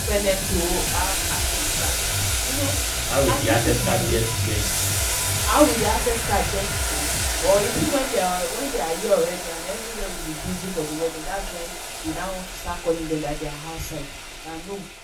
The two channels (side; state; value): both; identical; correlation 1.00